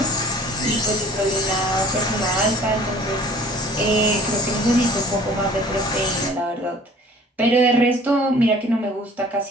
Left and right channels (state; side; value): normal; both; correlation 0.50